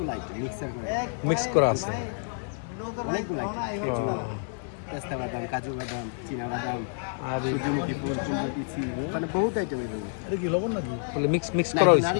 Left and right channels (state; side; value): silent; right; 56 dB below the other